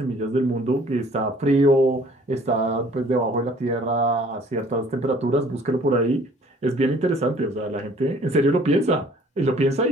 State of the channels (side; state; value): both; normal; correlation 0.55